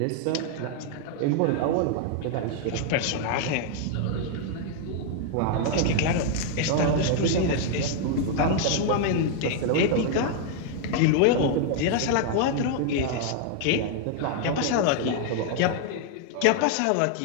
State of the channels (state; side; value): different; both; correlation 0.00